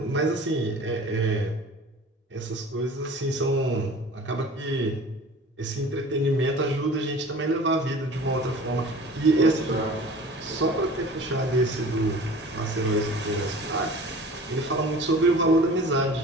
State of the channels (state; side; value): normal; both; correlation 0.42